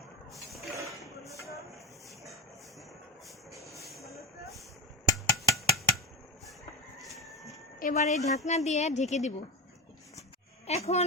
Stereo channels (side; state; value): both; normal; correlation 0.17